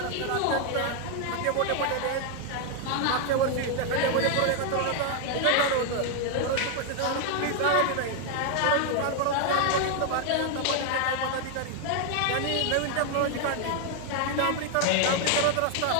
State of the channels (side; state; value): both; different; correlation 0.00